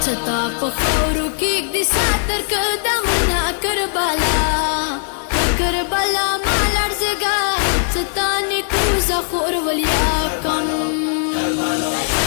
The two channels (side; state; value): right; silent; 61 dB below the other